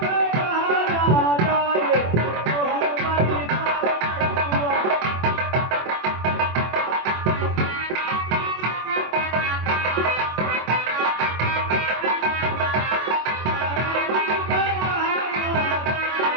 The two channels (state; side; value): late; left; 24 ms